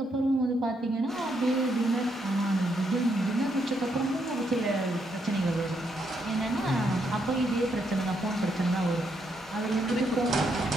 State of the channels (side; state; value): both; normal; correlation 0.77